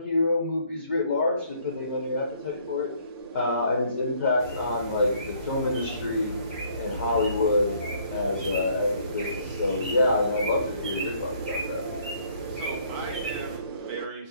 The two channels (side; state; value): both; inverted; correlation -0.62